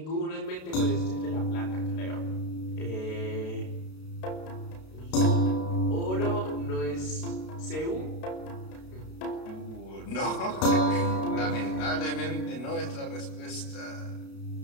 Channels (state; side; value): late; right; 32 ms